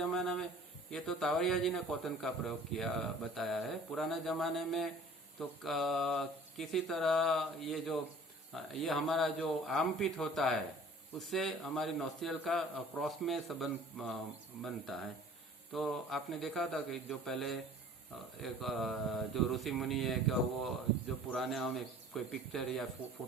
में ये तो तावरिया जी ने कॉटन का प्रयोग किया बताया है. पुराने जमाने में तो किसी तरह ये हमारा जो आर्मपिट होता है उससे हमारी नोस्ट्रियल का क्रॉस में संबंध बनता है. तो आपने देखा था कि जो पहले एक जो ऋषि मुनि है क्या, वो जो पुराने हमें कोई पिक्चर या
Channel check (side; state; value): both; normal; correlation 0.49